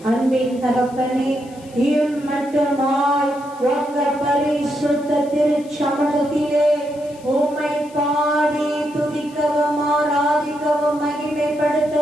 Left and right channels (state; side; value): noise; left; hiss, 25 dB below the sound